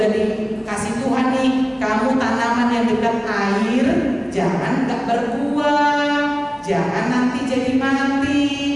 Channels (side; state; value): both; identical; correlation 1.00